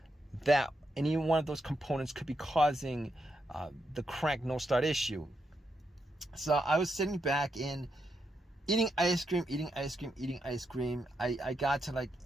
that any one of those components could be causing the crank no start issue. So I was sitting back and eating ice cream. I got to like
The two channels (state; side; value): normal; both; correlation 0.82